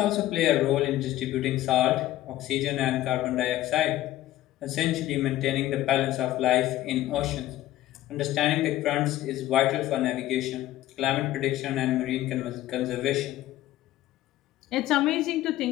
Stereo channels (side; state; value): right; quieter; 14.7 dB